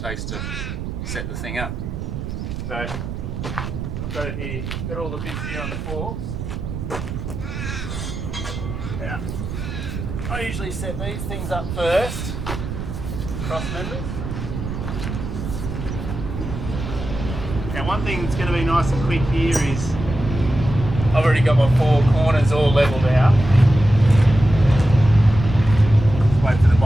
takes to set the thing up. So I've got it here, got all the bits here on the forks. Now, I usually set these things up first, cross members. Now one thing that's going to be nice and quick here is I've already got my four corners all levelled out. Just wait for the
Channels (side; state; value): right; noise; rumble, 6 dB below the sound